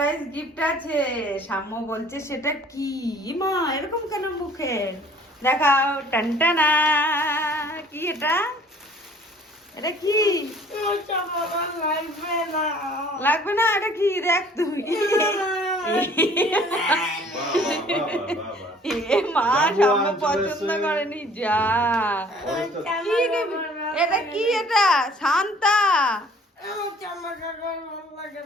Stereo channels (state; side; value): normal; both; correlation 0.54